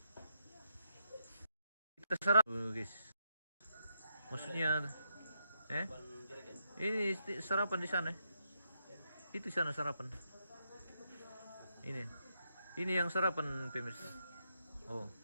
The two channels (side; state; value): both; inverted; correlation -0.80